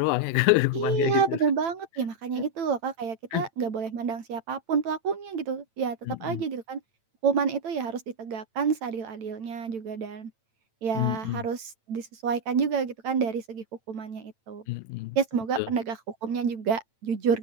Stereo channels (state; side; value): late; left; 9.0 ms